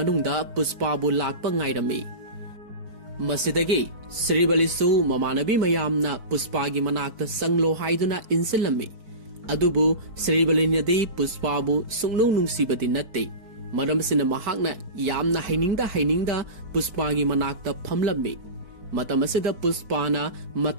पुष्पाबु लाकपा ngairami मसिदगी श्रीबलीसु ममानबी मयामना पुष्पागी मनाक्ता संगलो हाइदुना इंसिलमी अदुबु श्रीबलीनदी पुष्पाबु सुंगनु नुंसीबदी नत्ते मरमसिना महांगना यामना हाइनिंगदा पुष्पागी मनाक्ता फमलमी मतमसिदा पुष्पाना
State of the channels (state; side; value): late; left; 4.6 ms